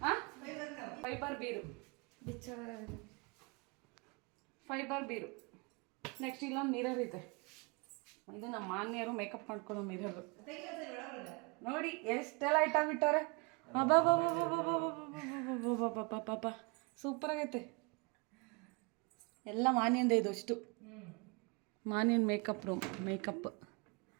ಹಾಂ ಫೈಬರ್ ಬೀರು, ಫೈಬರ್ ಬೀರು. ನೆಕ್ಸ್ಟ್ ಇಲ್ಲೊಂದು ಮಿರರ್ ಇದೆ. ಇದು ನಮ್ಮ ಮಾನ್ಯರು ಮೇಕಪ್ ಮಾಡ್ಕೊಳ್ಳೋ ಮಿರರು. ನೋಡಿ ಎಷ್ಟೆಲ್ಲ ಐಟಮ್ ಇಟ್ಟವ್ರೆ. ಪಾಪ ಸೂಪರ್ ಆಗೈತೆ. ಎಲ್ಲ ಮಾನ್ಯಂದೇ ಇದು ಅಷ್ಟು. ಮಾನ್ಯನ್ ಮೇಕಪ್ ರೂಮ್, ಮೇಕಪ್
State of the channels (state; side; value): quieter; left; 30.1 dB